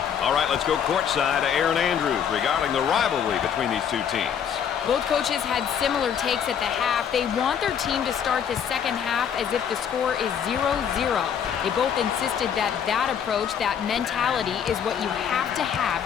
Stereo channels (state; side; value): quieter; right; 8.2 dB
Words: All right, let's go courtside to Erin Andrews regarding the rivalry between these two teams. Both coaches had similar takes at the half. They want their team to start the second half as if the score is 0-0. They both insisted that that approach, that mentality, is what you have to